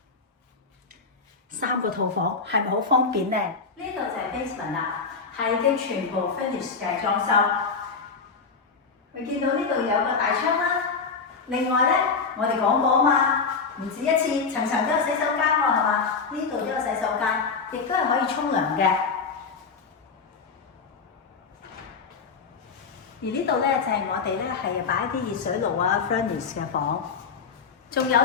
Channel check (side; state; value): right; quieter; 5.0 dB